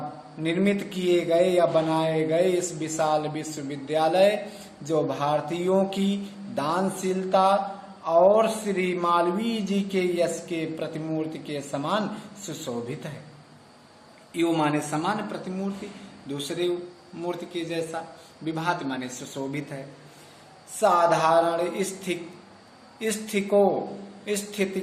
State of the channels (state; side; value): identical; both; correlation 1.00